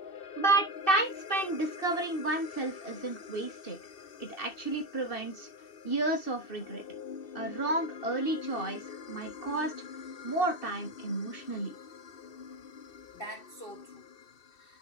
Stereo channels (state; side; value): late; right; 2.7 ms